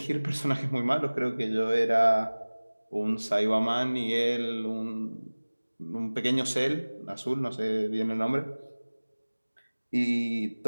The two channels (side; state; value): both; inverted; correlation -1.00